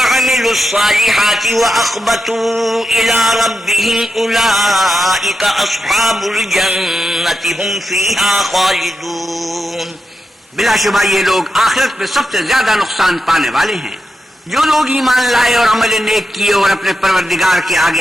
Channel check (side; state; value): both; normal; correlation 0.88